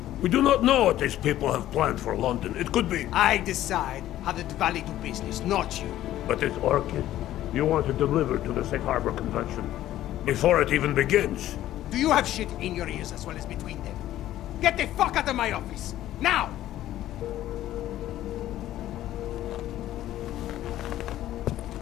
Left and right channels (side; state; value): right; quieter; 13.5 dB